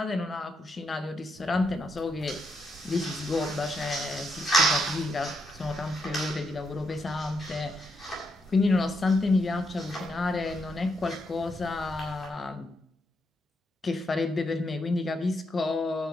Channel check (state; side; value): normal; both; correlation 0.80